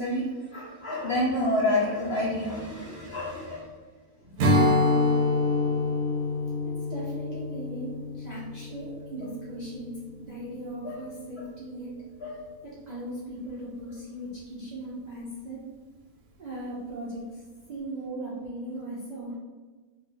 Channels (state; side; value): normal; both; correlation -0.12